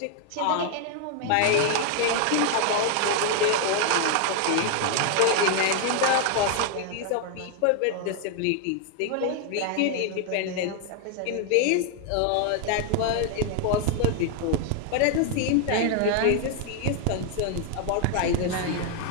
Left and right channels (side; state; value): both; different; correlation 0.00